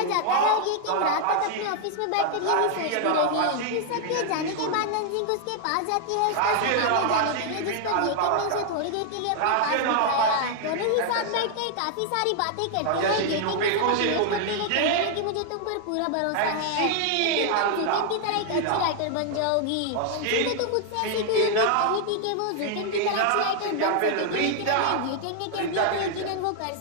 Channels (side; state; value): both; different; correlation 0.00